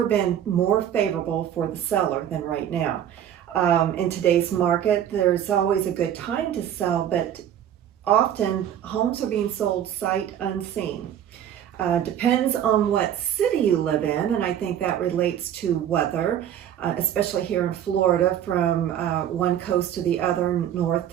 been more favorable for the seller than right now. In today's market, there's always a good time to sell, but often homes are being sold sight unseen. Depends on what city you live in, and I think that relates to weather, especially here in Florida from one coast to the other, north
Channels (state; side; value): quieter; left; 10.2 dB